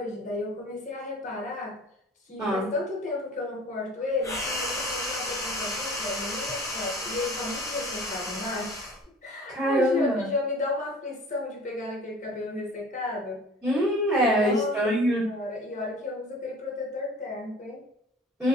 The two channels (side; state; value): both; normal; correlation 0.45